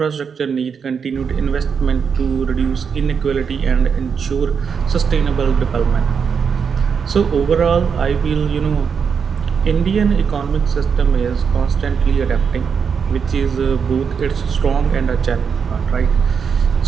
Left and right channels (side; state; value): left; quieter; 6.4 dB